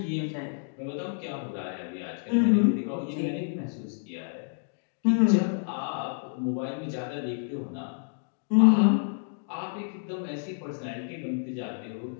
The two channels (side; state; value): right; silent; digital silence